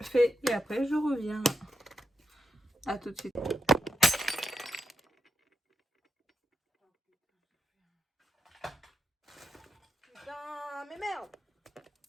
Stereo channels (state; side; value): normal; both; correlation 0.85